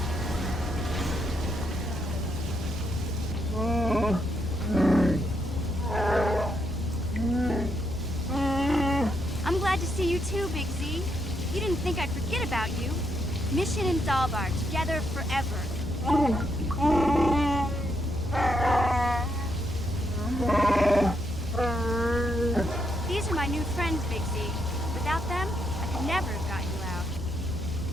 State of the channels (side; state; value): both; normal; correlation 0.78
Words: I'm glad to see you too, Big Z. You didn't think I'd forget about you. Mission and Dalbar, together forever. These are my new friends, Big Z. Without them, I could never have got you out.